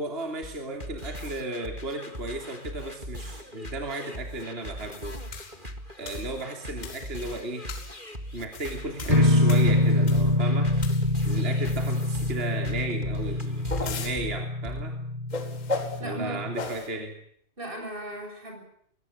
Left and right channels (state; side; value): late; left; 2.4 ms